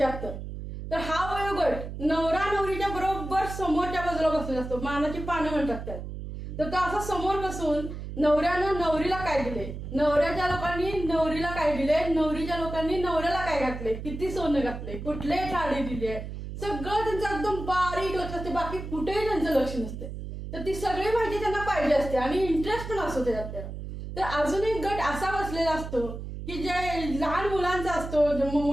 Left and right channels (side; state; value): right; noise; hum, 8 dB below the sound